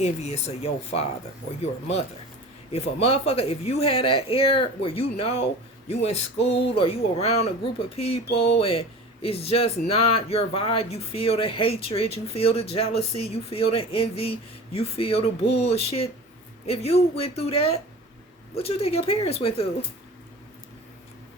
of your father or your mother. If a motherfucker, if you had that air where you know you in school or you around a group of people and it's just not your vibe, you feel the hatred, you feel the jealousy, you feel the envy, you feel the bullshit. If you went through that, what you think your parents went through?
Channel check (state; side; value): normal; both; correlation 0.37